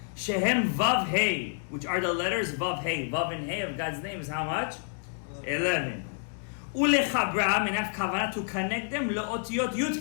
Shehem vav hey, which are the letters vav hey. Vav and hey of God's name is how much? 11. Ulechabram, and have kavanah to connect them leotiyot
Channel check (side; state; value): right; silent; 59 dB below the other